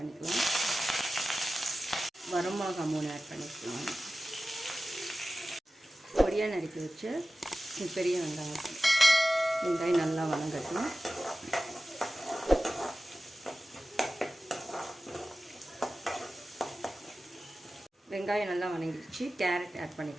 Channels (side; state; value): both; normal; correlation 0.95